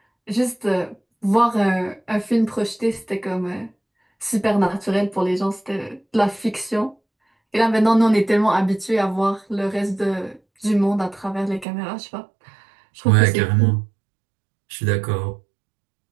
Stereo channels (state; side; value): drops out; left; at 11.7 s